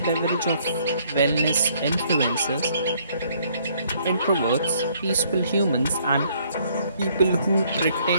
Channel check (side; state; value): both; inverted; correlation -0.65